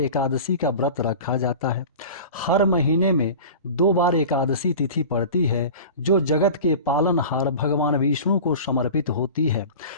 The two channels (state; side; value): inverted; both; correlation -0.36